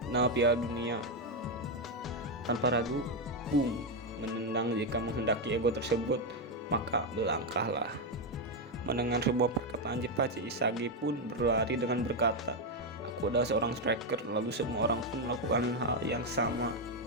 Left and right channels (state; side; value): normal; both; correlation 0.04